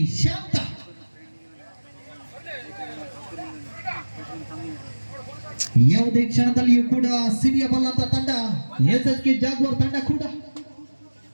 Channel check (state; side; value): inverted; both; correlation -1.00